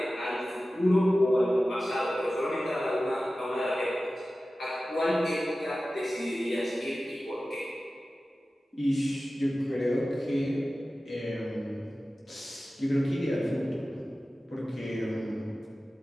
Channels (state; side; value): normal; both; correlation 0.95